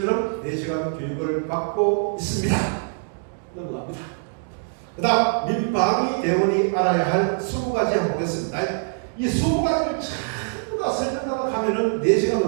4시간 교육을 받고 있습니다. 넘어갑니다. 그 다음 민방위 대원이 알아야 할 20가지 한번 보겠습니다. 이 20가지를 전부 다 설명하다 가면은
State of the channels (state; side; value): silent; left; digital silence